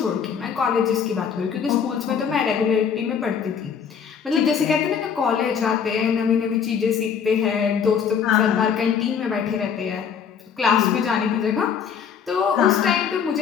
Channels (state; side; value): quieter; right; 7.2 dB